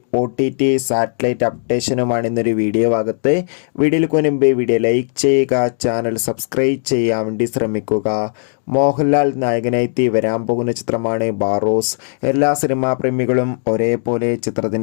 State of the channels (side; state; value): right; silent; digital silence